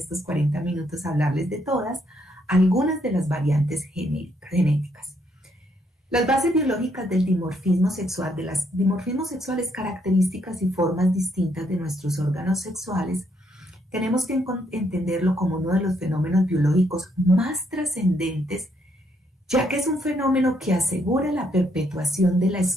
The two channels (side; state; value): both; normal; correlation 0.73